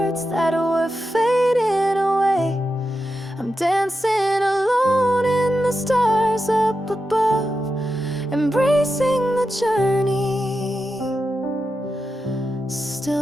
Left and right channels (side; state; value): both; normal; correlation 0.89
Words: that were fading away. I'm dancing alone in the stars up above, embracing the journey,